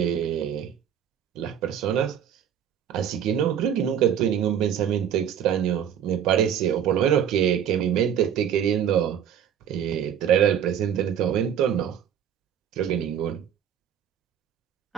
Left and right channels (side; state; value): left; quieter; 9.0 dB